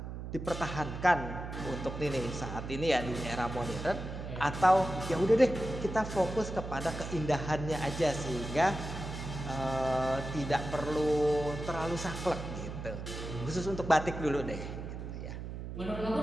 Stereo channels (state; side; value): noise; right; hum, 7 dB below the sound